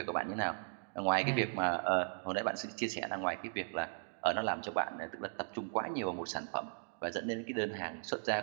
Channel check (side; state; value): left; silent; digital silence